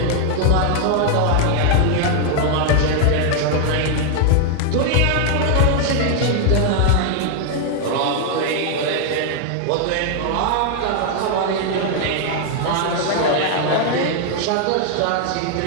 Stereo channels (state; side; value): different; both; correlation 0.00